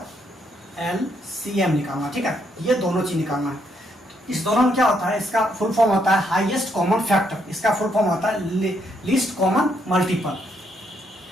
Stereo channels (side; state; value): both; normal; correlation 0.74